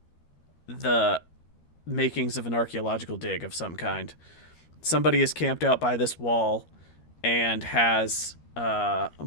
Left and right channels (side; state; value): right; late; 13 ms